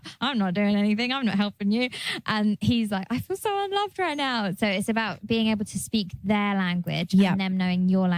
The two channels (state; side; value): identical; both; correlation 1.00